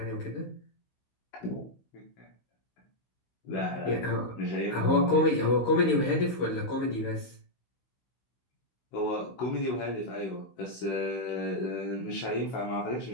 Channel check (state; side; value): late; right; 16 ms